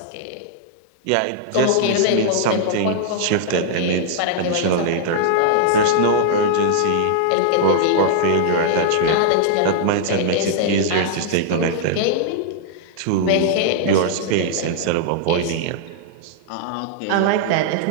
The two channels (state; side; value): different; both; correlation -0.01